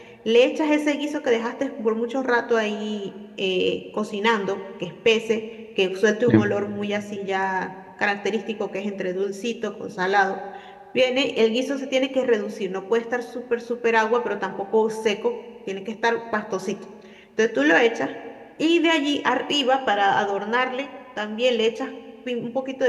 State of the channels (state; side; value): identical; both; correlation 1.00